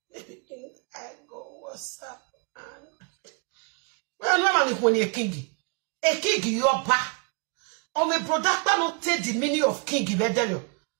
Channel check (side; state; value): left; quieter; 33.8 dB